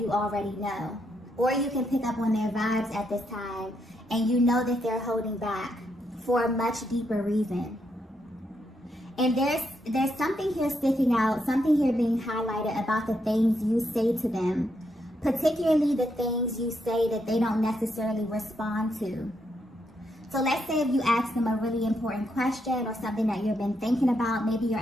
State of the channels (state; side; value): normal; both; correlation 0.79